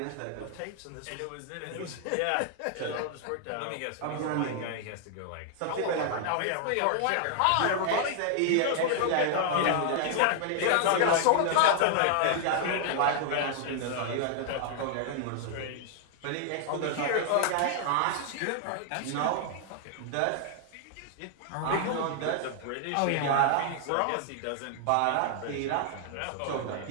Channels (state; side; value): different; both; correlation 0.00